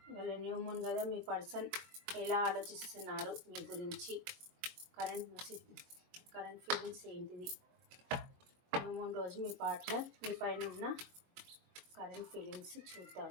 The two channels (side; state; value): left; late; 22 ms